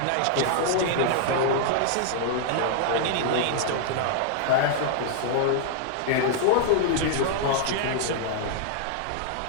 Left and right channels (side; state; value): both; different; correlation -0.01